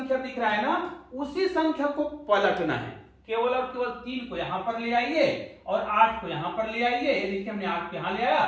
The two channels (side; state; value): both; identical; correlation 1.00